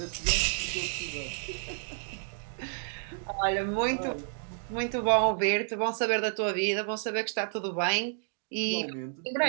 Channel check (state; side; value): silent; left; digital silence